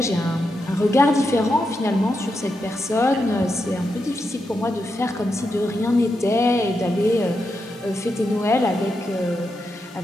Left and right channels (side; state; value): both; normal; correlation 0.85